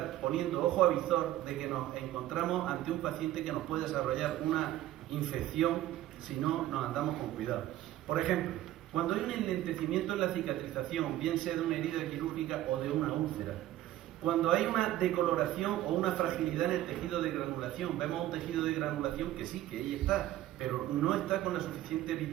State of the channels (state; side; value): quieter; left; 14.2 dB